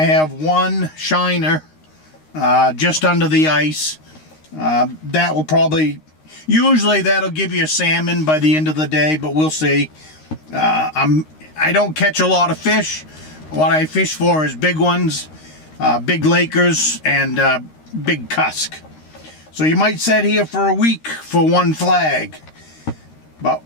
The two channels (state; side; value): late; right; 13 ms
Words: have 1 shiner just under the ice. That will probably, usually that'll give you a salmon by the end of the day, but we'll see. I don't catch a lot of fish. What I fish for is big ones, big Lakers, and big cusk. So you might sit here for a week for 1 flag, but